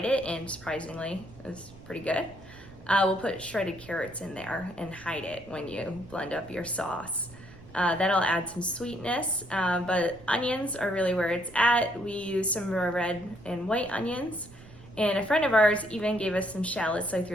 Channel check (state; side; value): noise; right; rumble, 20 dB below the sound